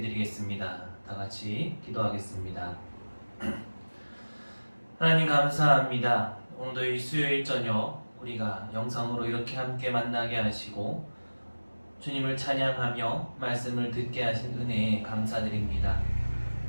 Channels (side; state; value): both; inverted; correlation -1.00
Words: 드리겠습니다. 다 같이 기도하겠습니다. 하나님 감사합니다. 오늘도 이 수요일 저녁 우리가 영상으로 이렇게 함께 만나게 하시고 주님을 찬양하며 말씀을 듣게 하신 은혜에 감사드립니다.